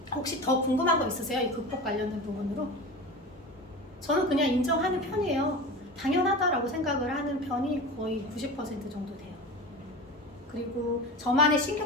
혹시 더 궁금한 거 있으세요? 이 극복 관련된 부분으로? 저는 그냥 인정하는 편이에요. 당연하다라고 생각을 하는 편이 거의 90% 정도 돼요. 그리고 저만의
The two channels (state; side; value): normal; both; correlation 0.31